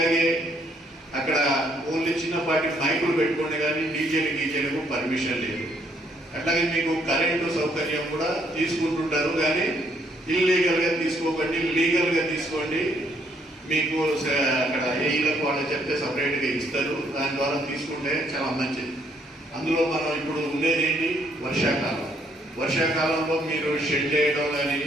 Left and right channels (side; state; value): both; normal; correlation 0.69